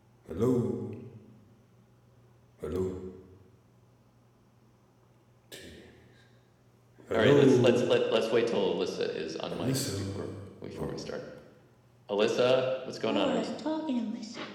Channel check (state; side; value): identical; both; correlation 1.00